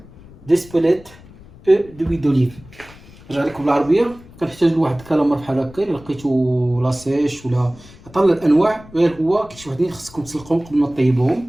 des spolettes et de l'huile d'olive. نرجع لكم بالعربيه. كنحتاج لواحد الكالامار بحال هكا، الا لقيتو لاسيش ولا عطا الانواع، غير هو كاين شي وحدين خصكم تسلقوهم قبل ما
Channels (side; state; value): left; noise; rumble, 21 dB below the sound